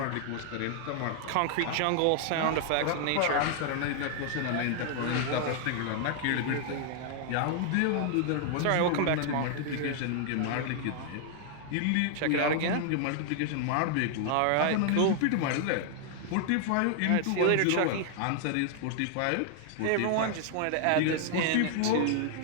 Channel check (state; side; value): different; both; correlation 0.00